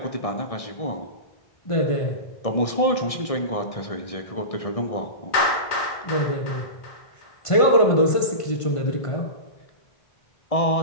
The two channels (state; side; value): late; right; 1.6 ms